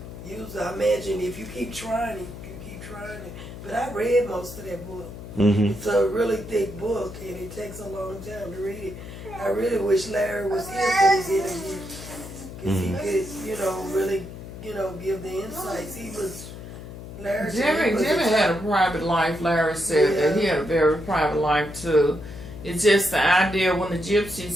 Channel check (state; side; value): noise; left; hum, 12 dB below the sound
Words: user. I imagine if you keep trying it, you keep trying it. But I read most of that book. It's a really thick book, and it takes a long time to read it. I really wish Larry was here for this interview, because he could, really, give the insights. He was. Jimmy had a private life. Larry said that he had a very private life too. It's just the idea when the